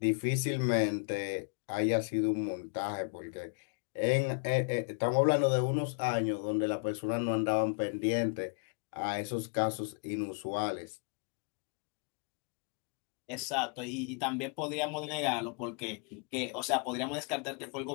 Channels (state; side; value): quieter; right; 37.1 dB